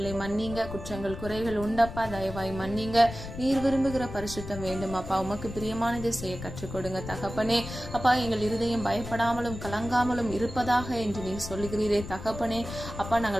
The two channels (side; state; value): left; noise; rumble, 10 dB below the sound